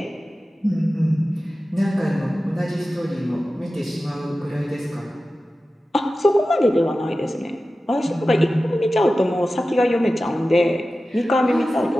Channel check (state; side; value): normal; both; correlation 0.94